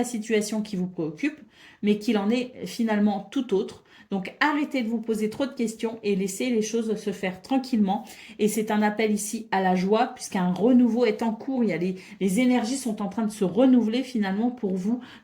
situation qui vous préoccupe, mais qu'il en est finalement tout autre. Donc arrêtez de vous poser trop de questions et laissez les choses se faire tranquillement. Et c'est un appel ici à la joie puisqu'un renouveau est en cours. Il y a les énergies sont en train de se renouveler finalement pour vous.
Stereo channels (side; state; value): both; identical; correlation 1.00